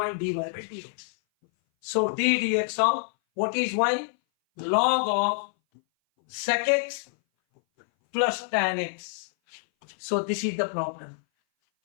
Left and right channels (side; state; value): right; silent; 58 dB below the other